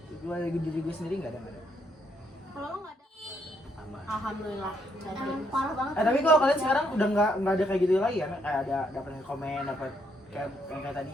gue dari diri gue sendiri nggak ada. Kalau lo nggak ada, sama. Alhamdulillah. emang parah banget. Tapi kalau kalian sekarang udah nggak ada kayak gitu lagi ya, kayak ada dapat komen, dapat kayak yang kayak tadi.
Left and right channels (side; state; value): both; normal; correlation 0.73